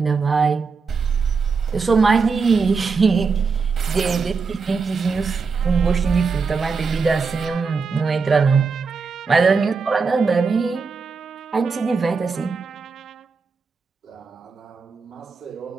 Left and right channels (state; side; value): quieter; left; 4.9 dB